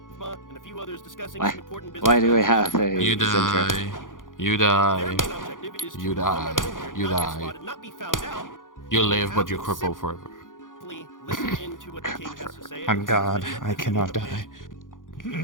and a few others discussing some important business. Why do we have a You center? die. You die. You die. You die. Not be found out. You live, but you cripple forever. Listen into what the king has to say. I'm God. I cannot die.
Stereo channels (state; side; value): late; right; 0.89 ms